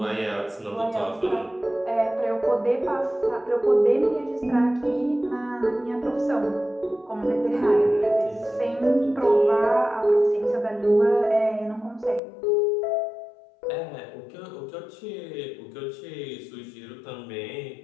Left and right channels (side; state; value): right; drops out; at 12.2 s